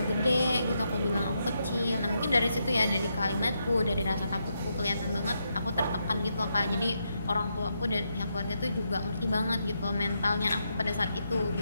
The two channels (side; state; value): both; inverted; correlation -0.82